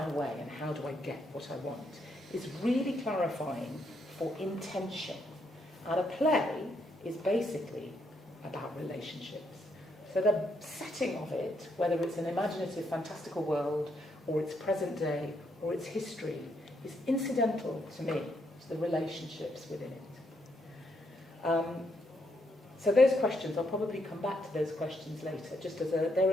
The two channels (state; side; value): normal; both; correlation 0.76